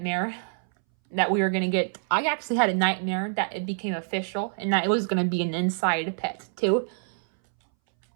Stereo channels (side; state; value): left; silent; 61 dB below the other